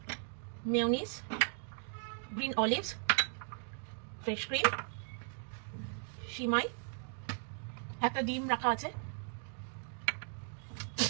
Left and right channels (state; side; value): silent; left; 53 dB below the other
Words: mayonnaise, green olives, fresh cream, সিমাই, একটা ডিম রাখা আছে,